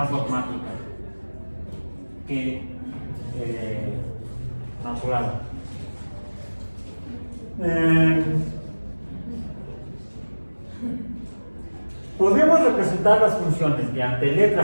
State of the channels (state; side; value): inverted; both; correlation -1.00